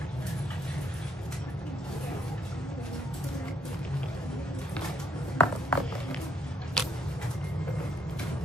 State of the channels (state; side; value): normal; both; correlation 0.70